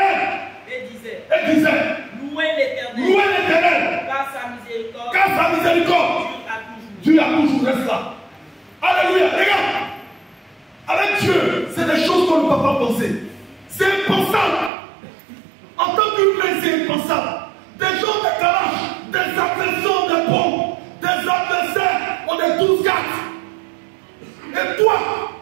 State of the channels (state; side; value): drops out; left; at 14.7 s